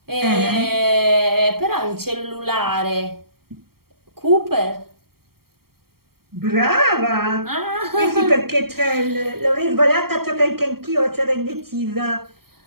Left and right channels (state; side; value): late; left; 0.94 ms